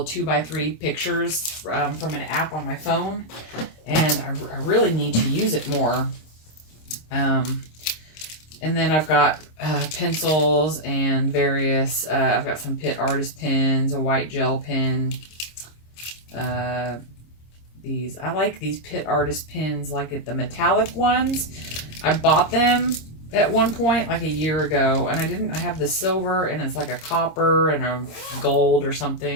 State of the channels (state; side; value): late; right; 26 ms